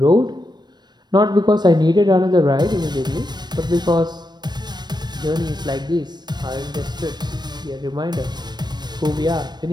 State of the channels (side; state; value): left; late; 0.21 ms